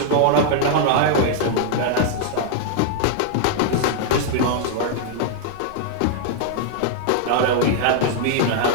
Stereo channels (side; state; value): both; different; correlation 0.00